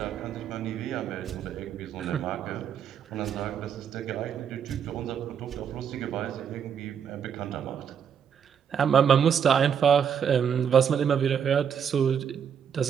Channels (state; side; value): quieter; left; 7.8 dB